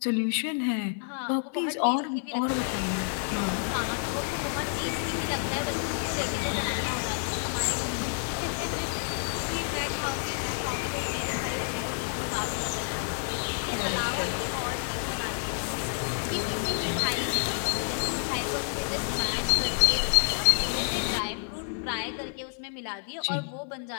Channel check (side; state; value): right; silent; 58 dB below the other